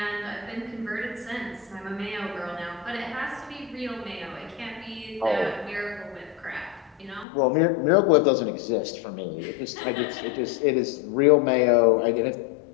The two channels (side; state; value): right; drops out; at 7.2 s